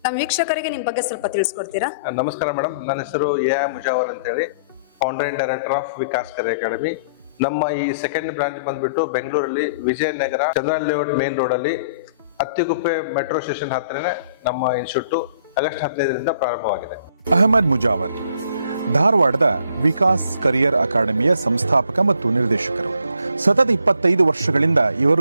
ನಮ್ಮ ವೀಕ್ಷಕರಿಗೆ ನಿಮ್ಮ ಬಗ್ಗೆ ಸ್ವಲ್ಪ ತಿಳಿಸ್ಕೊಡ್ತೀರಾ? ನಮಸ್ಕಾರ ಮೇಡಮ್, ನನ್ನ ಹೆಸರು ಎ ಮುಜಾವರ್ ಅಂತೇಳಿ, founder and director of Vikas career academy. ನಮ್ಮ ಈ ಸೆಕೆಂಡ್ ಬ್ರಾಂಚ್ ಬಂದ್ಬಿಟ್ಟು ಬೆಂಗಳೂರಲ್ಲಿ Vijayanagara Chandran layout main road ಅಲ್ಲಿ ಅತ್ತಿಗುಪ್ಪೆ ಮೆಟ್ರೋ ಸ್ಟೇಷನ್ ಹತ್ತಿರನೇ ನಮ್ಮ ಇನ್ಸ್ಟಿಟ್ಯೂಟ್ ಆಗಸ್ಟ್ 15ರಿಂದ ಪ್ರಾರಂಭವಾಗಿದೆ. ಅಹಮದ್ ಮುಜಾವರ್ ಧಾರವಾಡದ ವಿಕಾಸ್ ಕರಿಯರ್ ಅಕಾಡೆಮಿಯ ಸಂಸ್ಥಾಪಕ ಮತ್ತು ನಿರ್ದೇಶಕರು. ಸತತ 25 ವರ್ಷಗಳಿಂದ ಇವರು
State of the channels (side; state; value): both; inverted; correlation -0.61